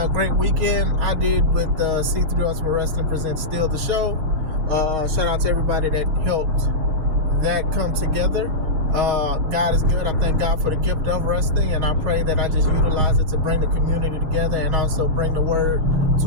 great weekend. I did with C3 Ultimate Wrestling presents Still the Show. Shout out to everybody that helped that come together. God is good. I thank God for the gift of wrestling, and I pray that I just utilize it to bring the community together and also bring the word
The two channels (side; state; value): left; late; 6.4 ms